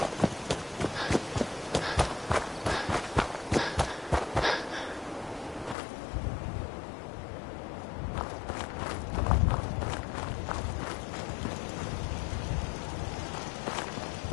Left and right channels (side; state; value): right; drops out; at 5.8 s